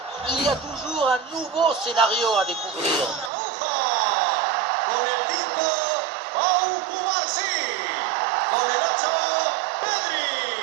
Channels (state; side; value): drops out; left; at 3.3 s